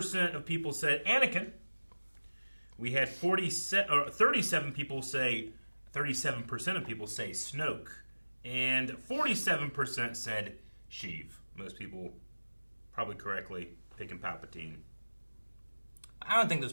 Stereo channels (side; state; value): both; inverted; correlation -1.00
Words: of people said Anakin. We had 37 people say, 37% of people say Snoke, and 47% said Sheev. Most people, probably correctly, picking Palpatine. I don't think those